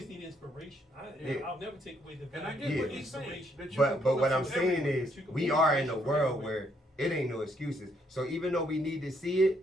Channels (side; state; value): both; normal; correlation 0.72